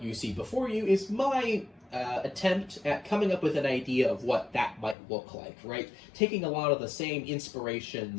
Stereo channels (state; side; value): drops out; right; at 5.0 s